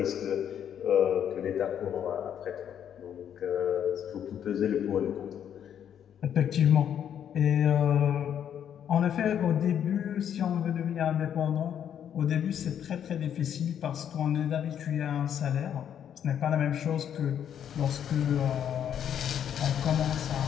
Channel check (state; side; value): quieter; right; 9.2 dB